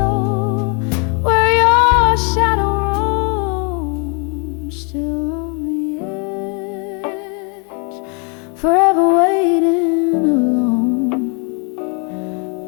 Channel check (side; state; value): right; quieter; 36.2 dB